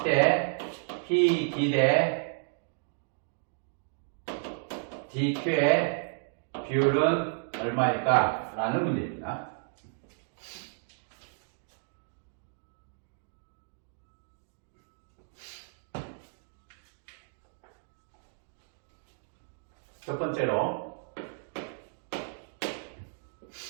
PD 대 DQ의 비율은 얼마일까? 라는 문제입니다. 첫 번째로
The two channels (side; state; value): left; silent; digital silence